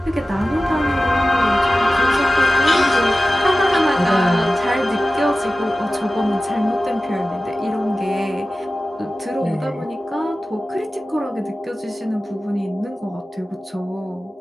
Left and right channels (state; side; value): normal; both; correlation 0.95